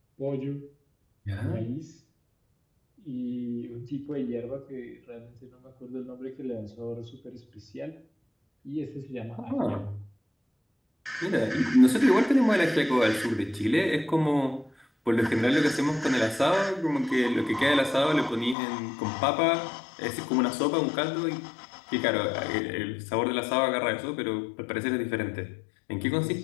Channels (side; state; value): right; drops out; at 18.6 s